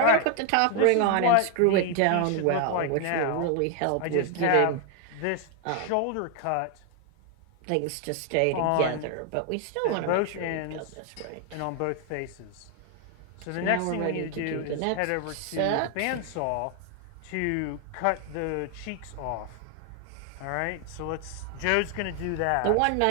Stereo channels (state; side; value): different; both; correlation 0.00